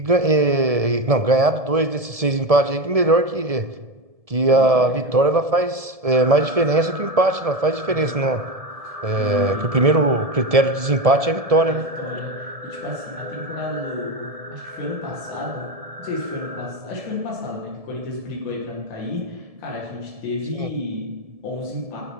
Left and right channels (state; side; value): late; left; 1.7 ms